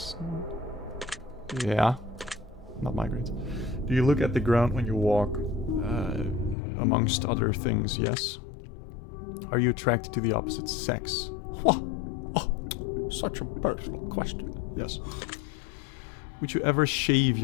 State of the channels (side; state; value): right; drops out; at 6.6 s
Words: Yeah. Not migraines. Do you look at the ground when you walk? Amongst other things, yes. Are you attracted to the opposite sex? What? Oh, such a personal question. Yes. Would you ever shave